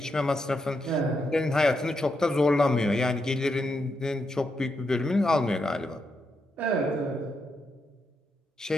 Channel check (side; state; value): both; normal; correlation 0.83